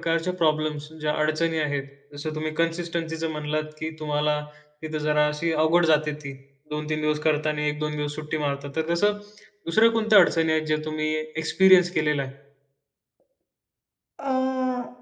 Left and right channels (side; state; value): both; identical; correlation 1.00